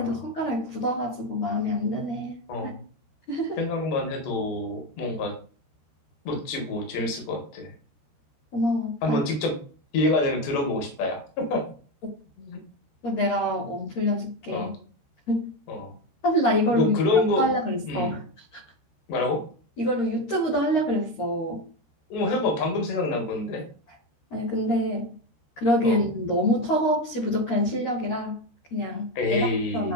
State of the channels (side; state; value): right; late; 13 ms